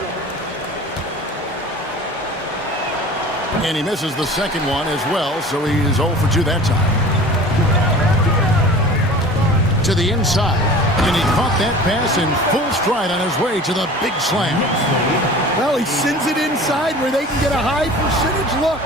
And he misses the second one as well, so he's 0 for 2 that time. To the inside. And he caught that pass in full stride on his way to the big slam. Well, he sends it inside where they can get a high percentage look.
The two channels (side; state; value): both; normal; correlation 0.41